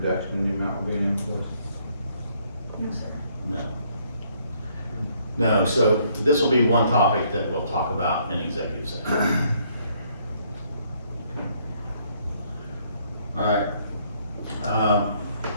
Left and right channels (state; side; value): inverted; both; correlation -0.67